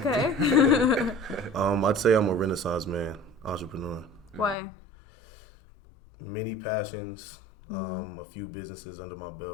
Okay. I'd say I'm a Renaissance man, entrepreneur. Why? Many passions, a few businesses under my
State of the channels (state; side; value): drops out; right; at 4.5 s